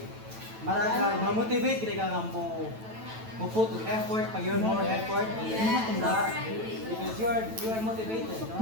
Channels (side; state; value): left; late; 9.1 ms